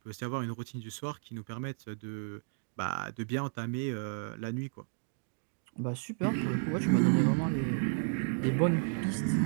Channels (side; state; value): left; silent; digital silence